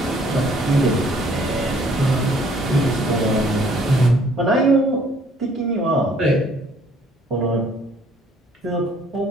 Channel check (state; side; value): normal; both; correlation 0.61